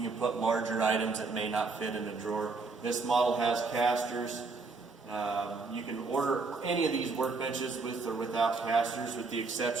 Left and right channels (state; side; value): quieter; left; 4.2 dB